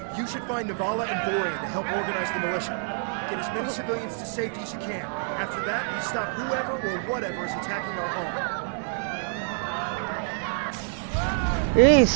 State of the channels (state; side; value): silent; left; 55 dB below the other